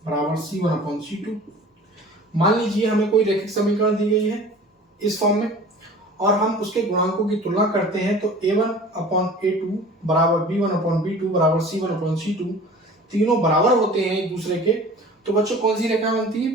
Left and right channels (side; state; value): both; normal; correlation 0.43